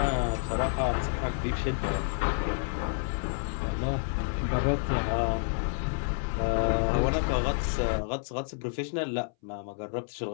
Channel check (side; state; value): right; silent; 58 dB below the other